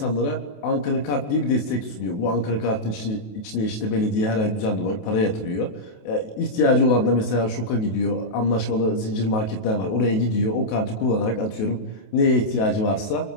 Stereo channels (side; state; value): right; late; 28 ms